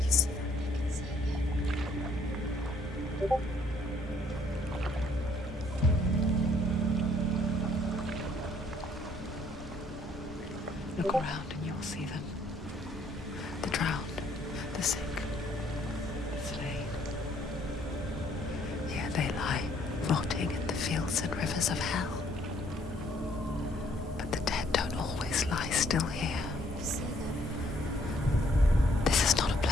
you see them? I can see you. Look around and you'll see them. The drowned, the sick, the slain. Here they lie, rotting in the fields and rivers of hell. But the dead don't always lie still here. You see them. This is not a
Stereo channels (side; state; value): both; normal; correlation 0.65